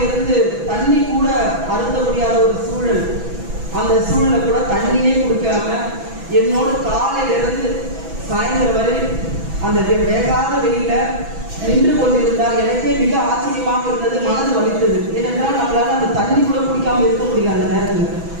தண்ணி கூட அருந்த முடியாத ஒரு சூழல். அந்த சூழலை கூட தண்ணியே குடிக்காம என்னோட காலையிலிருந்து சாயந்தரம் வரை அந்த வேகாத வெயில நின்று கொண்டிருந்தால் எனக்கே மிக ஆச்சரியமாக இருந்தது, மனது வலித்தது. ஏனென்றால் நம்மளால அந்த தண்ணி கூட குடிக்காம இருக்க முடியாது அந்த நேரத்தில்.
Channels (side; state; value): left; late; 6.0 ms